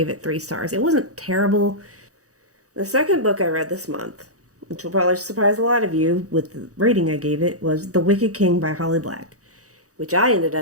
it 3 stars. It wasn't terrible. The second book I read this month, which will probably surprise a lot of you with the rating I gave it, was The Wicked King by Holly Black, which I ended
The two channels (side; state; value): left; late; 0.66 ms